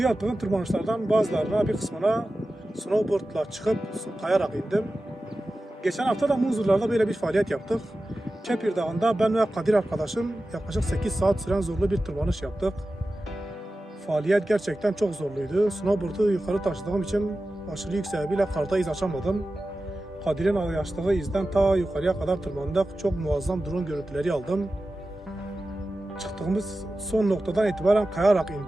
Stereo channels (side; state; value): both; normal; correlation 0.94